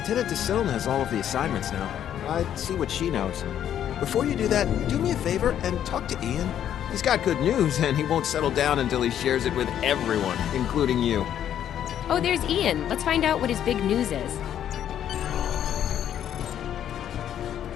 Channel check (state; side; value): quieter; right; 10.2 dB